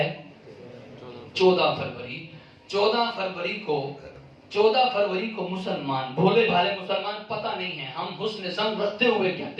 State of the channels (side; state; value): both; identical; correlation 1.00